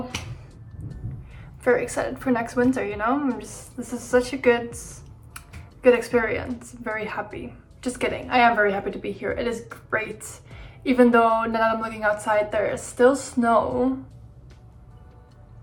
very excited for next winter, you know? This is such a good experience. I'm very happy. Just kidding, I am very happy to be here. It is great. Even though now that I'm looking outside, there is still snow,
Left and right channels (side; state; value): both; identical; correlation 1.00